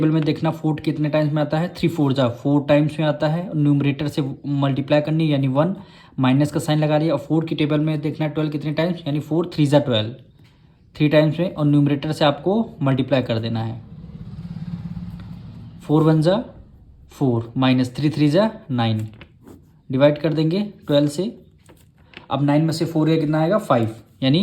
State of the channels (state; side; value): identical; both; correlation 1.00